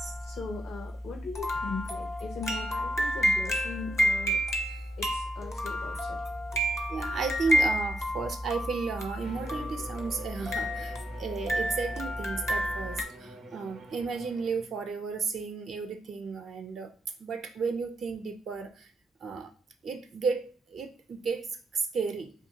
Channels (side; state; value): both; normal; correlation 0.81